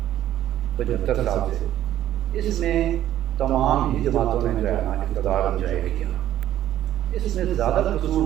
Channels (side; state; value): left; quieter; 12.4 dB